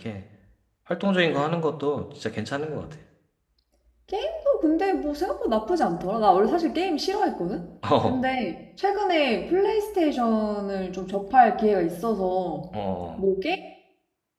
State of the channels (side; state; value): both; identical; correlation 1.00